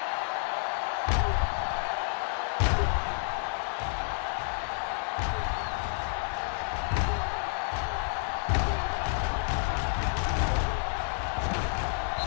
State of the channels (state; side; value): silent; right; 56 dB below the other